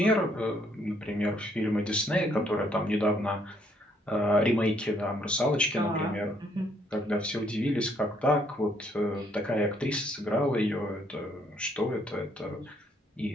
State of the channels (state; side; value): normal; both; correlation 0.68